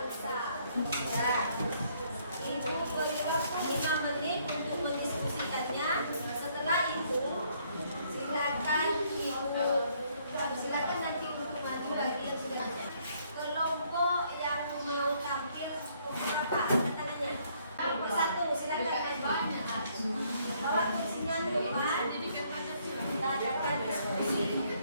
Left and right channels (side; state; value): both; inverted; correlation -0.67